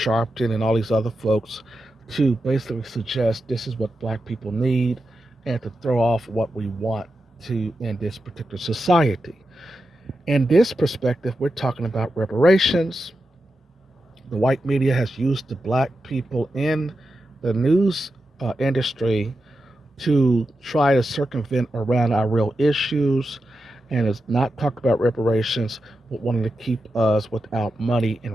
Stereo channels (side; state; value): both; normal; correlation 0.89